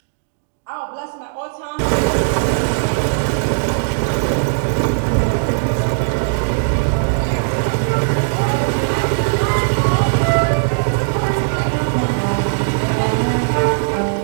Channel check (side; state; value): left; silent; digital silence